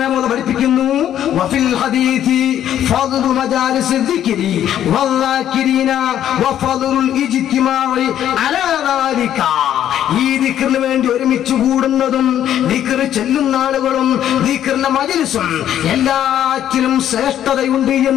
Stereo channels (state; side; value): quieter; right; 10.9 dB